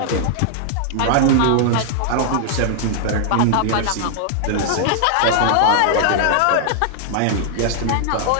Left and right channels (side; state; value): both; different; correlation -0.01